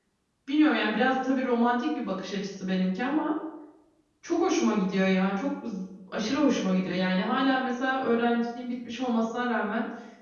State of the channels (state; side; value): identical; both; correlation 1.00